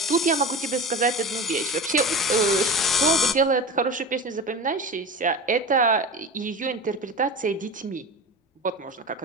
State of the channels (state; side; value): normal; both; correlation 0.30